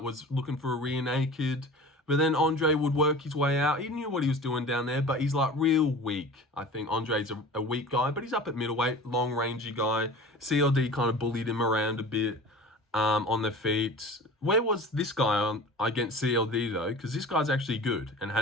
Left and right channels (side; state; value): both; normal; correlation 0.38